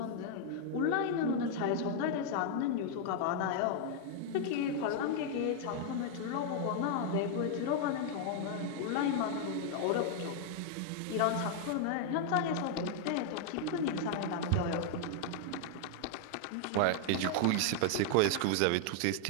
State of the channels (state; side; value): different; both; correlation 0.00